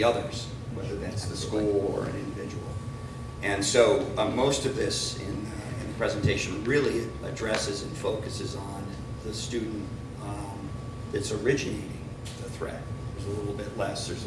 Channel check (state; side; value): identical; both; correlation 1.00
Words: others, whether that's the school or an individual. And so most of this in the presentation really addresses and focuses on the student that's originating the threat. There's a little bit less, there's